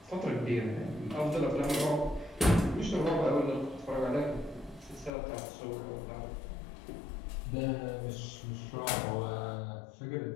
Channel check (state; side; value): drops out; right; at 5.1 s